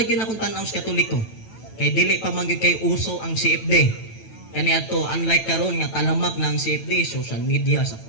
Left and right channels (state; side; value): late; right; 9.1 ms